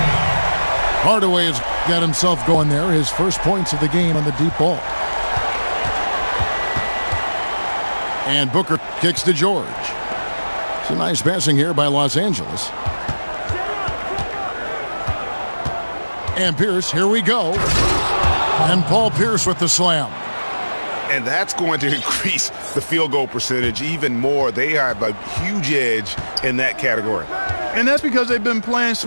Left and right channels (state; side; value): inverted; both; correlation -1.00